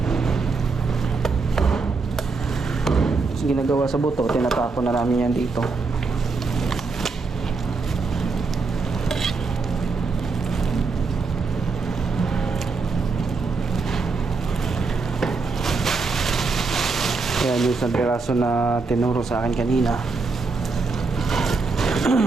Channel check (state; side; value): quieter; left; 4.3 dB